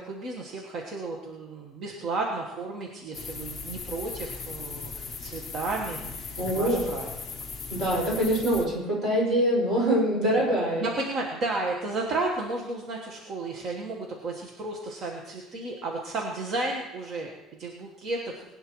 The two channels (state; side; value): normal; both; correlation 0.37